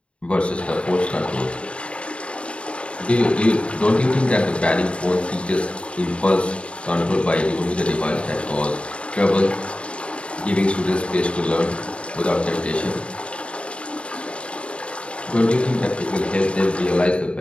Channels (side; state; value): right; late; 0.059 ms